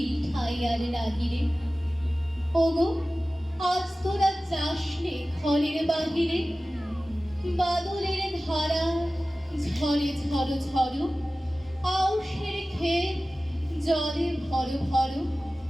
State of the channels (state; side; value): normal; both; correlation 0.96